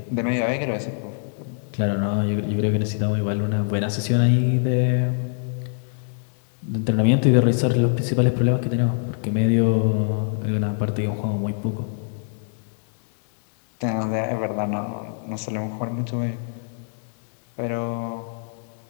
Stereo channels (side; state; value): right; silent; digital silence